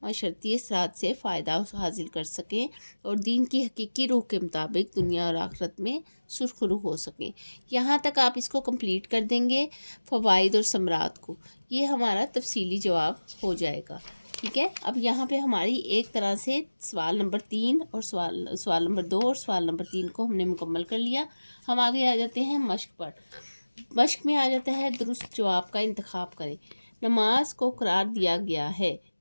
معاشرتی اثرات سے فائدہ حاصل کر سکیں اور دین کی حقیقی روح کے مطابق دنیا اور آخرت میں سرخرو ہو سکیں۔ یہاں تک آپ اس کو کمپلیٹ کر دیں گے فوائد اور ثمرات کو، یہ ہمارا تفصیلی جواب ہو جائے گا، ٹھیک ہے؟ اب یہاں پہ ہماری ایک طرح سے سوال نمبر 3 اور سوال نمبر 2 اور سوال نمبر 3 کو ہم نے مکمل کر لیا۔ ہم آگے آ جاتے ہیں مشق پر۔ مشق میں آ جاتا ہے درست جواب کا انتخاب کریں۔ نماز کو قرار دیا گیا ہے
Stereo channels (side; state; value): both; inverted; correlation -1.00